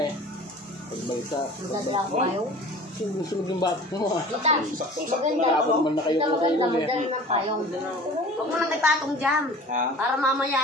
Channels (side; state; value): both; normal; correlation 0.43